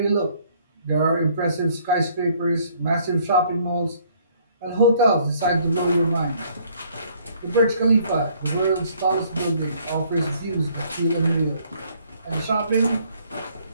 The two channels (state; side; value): inverted; both; correlation -0.62